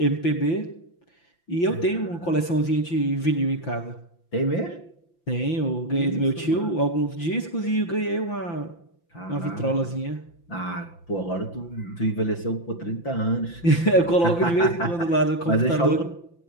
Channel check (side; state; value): right; late; 5.9 ms